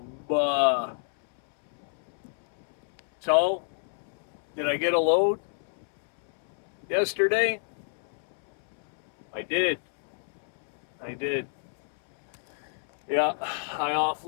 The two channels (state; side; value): silent; right; 59 dB below the other